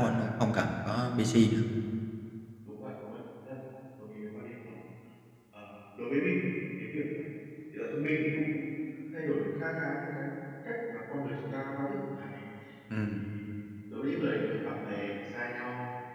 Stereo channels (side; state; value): both; identical; correlation 1.00